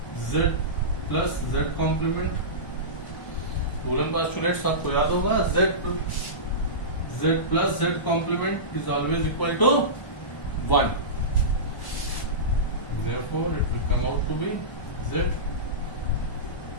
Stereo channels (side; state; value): right; late; 1.1 ms